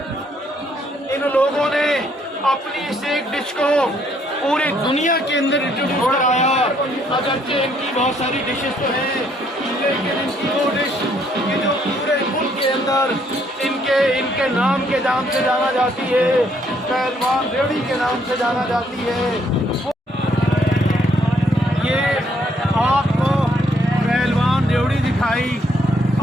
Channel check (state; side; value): normal; both; correlation 0.69